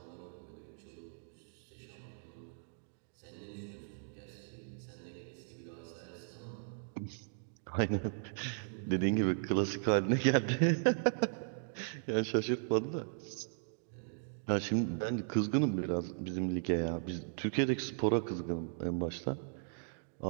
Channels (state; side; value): silent; left; digital silence